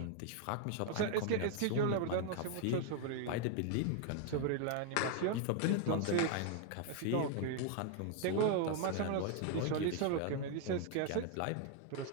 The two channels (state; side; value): different; both; correlation 0.00